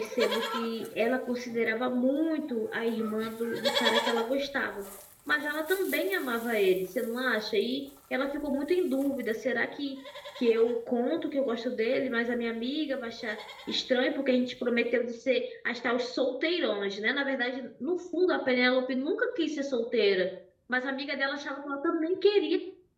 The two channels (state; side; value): identical; both; correlation 1.00